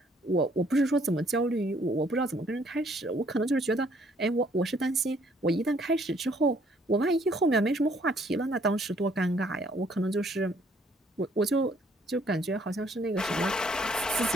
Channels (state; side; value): normal; both; correlation 0.64